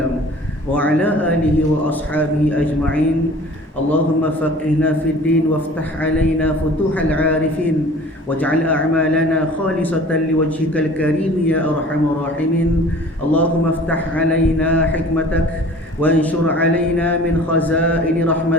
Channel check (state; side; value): normal; both; correlation 0.46